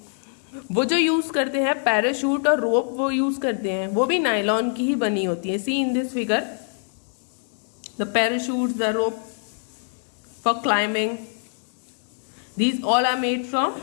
वो जो यूज करते हैं पैराशूट और रोप, वो यूज करते हैं, वो भी नायलॉन की ही बनी होती है. See in this figure, the parachutes, the rope for climbing, these all are made from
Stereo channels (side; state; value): right; silent; digital silence